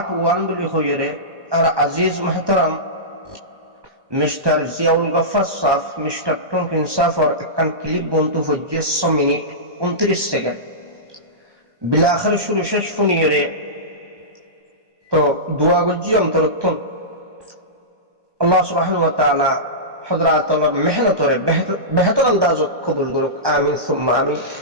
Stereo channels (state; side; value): late; left; 1.2 ms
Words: 1 bili khoyere ar aziz muhtaram Mr. Ziaul Ghaffar Saf, Mr. Tonkin Safar ekkan clip bontu hojje 100 minute 29 second. Bila akhir shuru shesh funiyere to dua gojji amtarottun Allah subhanahu wa ta'ala hadratul mehnatore behtar andazot qabul goruk amin summa amin.